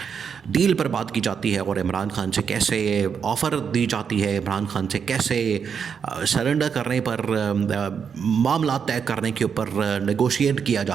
डील पर बात की जाती है और इमरान खान से कैसे ऑफ़र दी जाती है, इमरान खान से कैसे सरेंडर करने पर मामला तय करने के ऊपर नेगोशिएट किया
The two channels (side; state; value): left; quieter; 6.8 dB